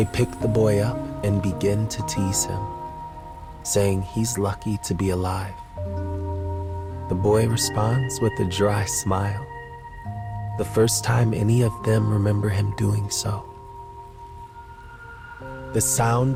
pick the boy up and begin to tease him, saying he's lucky to be alive. The boy responds with a dry smile, the first time any of them remember him doing so. The sound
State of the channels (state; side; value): identical; both; correlation 1.00